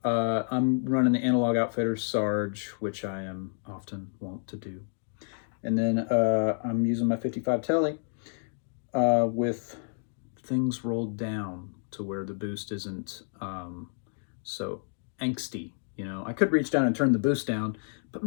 I'm running the Analog Outfitters Sarge, which I am often wont to do. And then I'm using my 55 Tele with things rolled down to where the boost isn't so angsty. You know, I could reach down and turn the boost down, but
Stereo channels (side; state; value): right; silent; 58 dB below the other